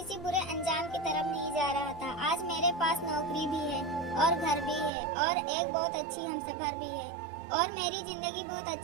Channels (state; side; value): drops out; left; at 4.9 s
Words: बुरे अंजाम की तरफ नहीं जा रहा था। आज मेरे पास नौकरी भी है और घर भी है और एक बहुत अच्छी हमसफर भी है और मेरी जिंदगी बहुत